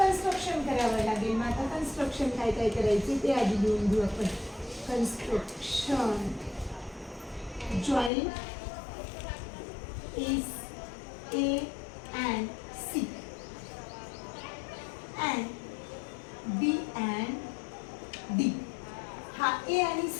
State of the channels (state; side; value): drops out; right; at 8.1 s